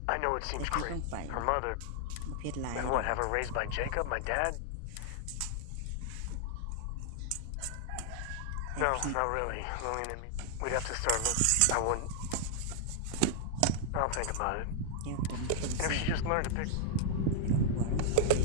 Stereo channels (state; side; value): different; both; correlation 0.00